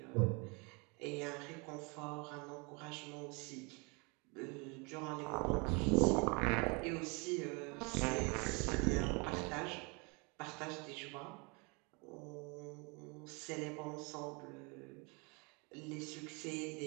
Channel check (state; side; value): quieter; left; 30.4 dB